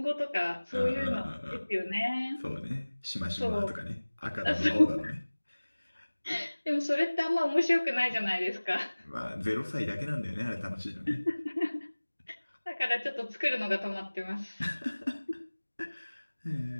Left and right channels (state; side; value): inverted; both; correlation -1.00